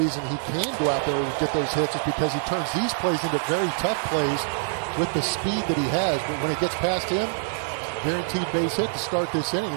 reason he can go out there and get those hits is because he turns these plays into very tough plays with the speed that he has. But when it gets past him, guaranteed base hit to start this inning.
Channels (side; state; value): left; silent; 62 dB below the other